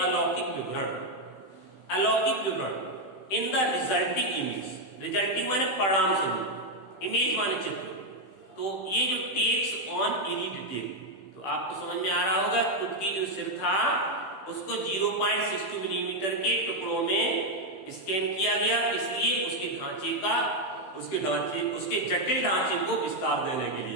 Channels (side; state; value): right; late; 16 ms